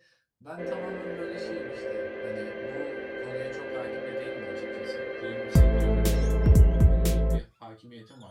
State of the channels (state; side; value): identical; both; correlation 1.00